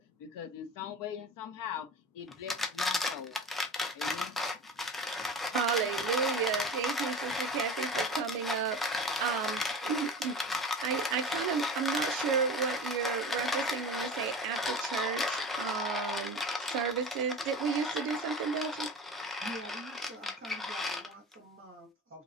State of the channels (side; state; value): both; normal; correlation 0.33